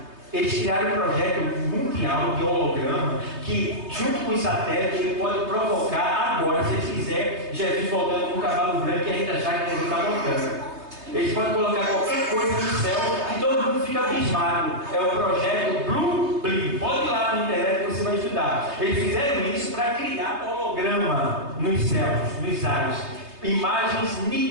Eles criaram um projeto mundial de holograma que, junto com os satélites, ele pode provocar agora, se eles quiserem, Jesus voltando com um cavalo branco e a gente achar que ele está voltando. Eles podem colocar qualquer coisa no céu e todo mundo fica abismado. É o projeto Blue Blim. Pode ir lá na internet que você vai estudar. Eles fizeram isso para criar holograma nos céus, nos ares. Imagens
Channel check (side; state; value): left; late; 3.3 ms